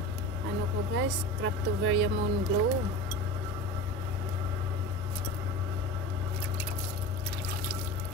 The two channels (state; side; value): normal; both; correlation 0.31